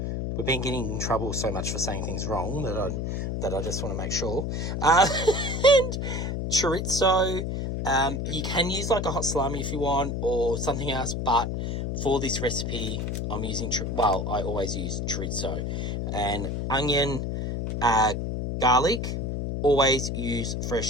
We've been getting in trouble so much for saying things wrong that I just want to make sure. And chorizo. You can use like a hot salami if you want or something else, but for this recipe, I'm using, I always use chorizo. And onion, garlic. Always use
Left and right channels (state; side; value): noise; left; hum, 2 dB below the sound